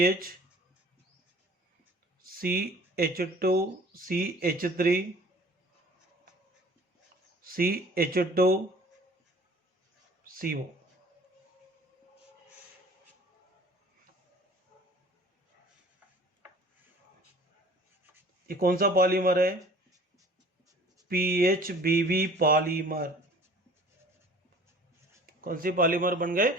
CH2 CH3 CH2 CO। ये कौन सा पॉलीमर है, PHBV पॉलीमर। कौन सी पॉलीमर बन गए,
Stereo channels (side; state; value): both; normal; correlation 0.48